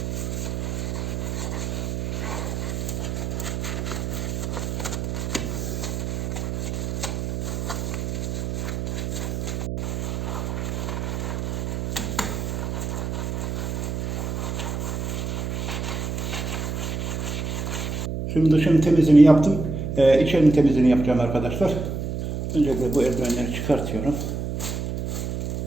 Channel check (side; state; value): right; noise; hum, 2 dB below the sound